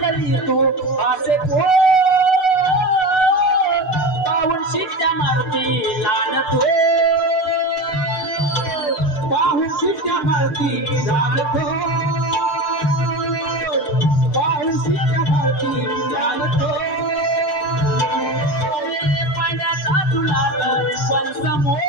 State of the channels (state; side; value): late; right; 6.7 ms